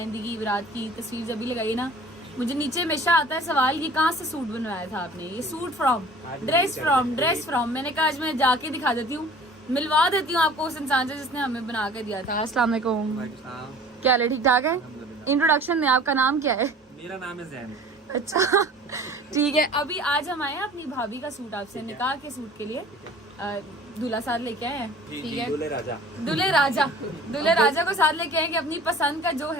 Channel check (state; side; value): normal; both; correlation 0.46